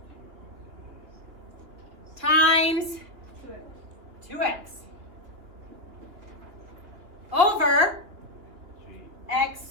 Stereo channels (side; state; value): left; late; 2.2 ms